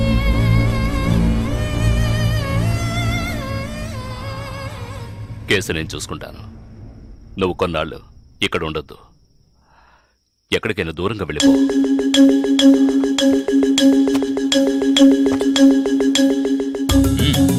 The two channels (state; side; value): identical; both; correlation 1.00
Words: కేసు నేను చూసుకుంటాను. నువ్వు కొన్నాళ్ళు ఇక్కడ ఉండొద్దు. ఎక్కడికైనా దూరంగా వెళ్ళిపో.